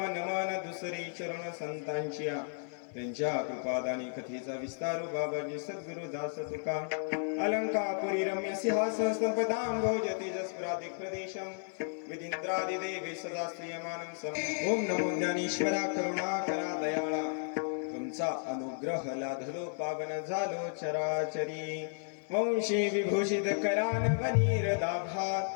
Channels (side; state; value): right; silent; 55 dB below the other